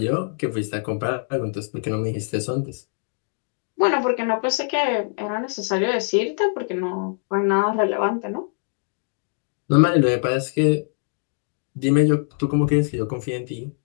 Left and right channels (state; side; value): silent; right; 63 dB below the other